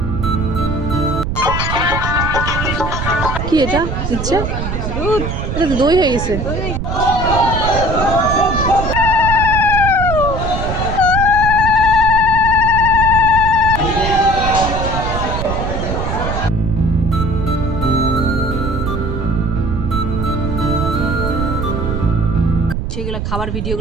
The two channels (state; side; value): noise; right; rumble, 3 dB below the sound